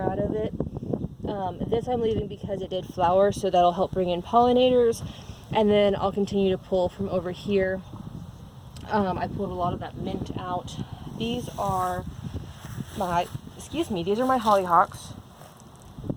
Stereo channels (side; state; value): both; identical; correlation 1.00